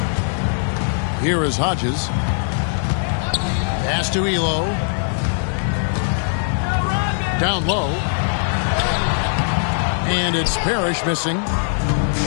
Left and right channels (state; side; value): silent; right; 66 dB below the other